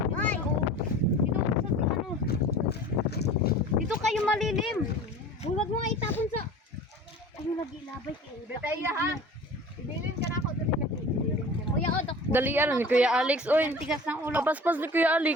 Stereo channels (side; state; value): both; normal; correlation 0.41